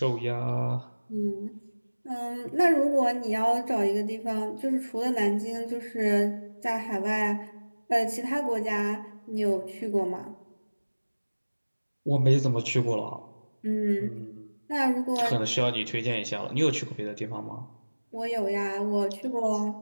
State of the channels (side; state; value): both; inverted; correlation -1.00